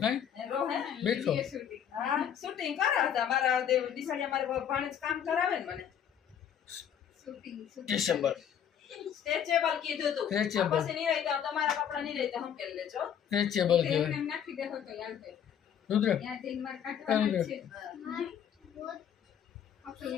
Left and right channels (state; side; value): quieter; right; 8.8 dB